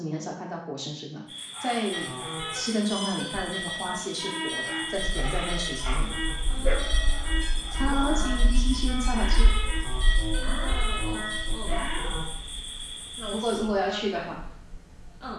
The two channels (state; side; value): identical; both; correlation 1.00